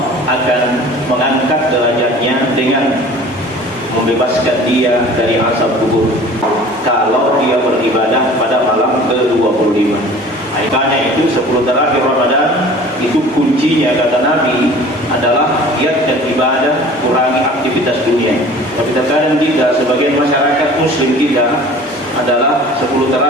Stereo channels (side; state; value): both; normal; correlation 0.45